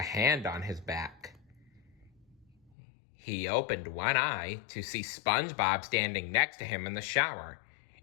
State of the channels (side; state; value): right; drops out; at 2.7 s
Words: hand on his back. He opened one eye to see SpongeBob standing next to him in the shower.